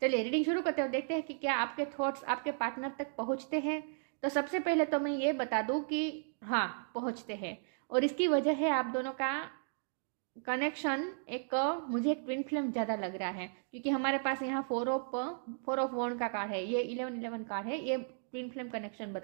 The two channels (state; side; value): silent; left; digital silence